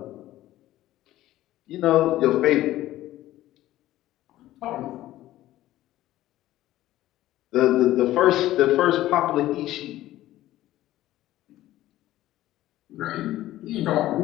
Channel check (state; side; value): quieter; right; 14.8 dB